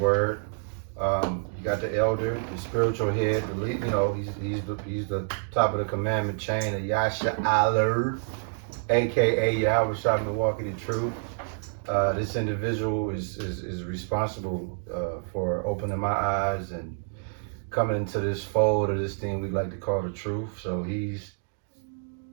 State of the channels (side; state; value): left; silent; digital silence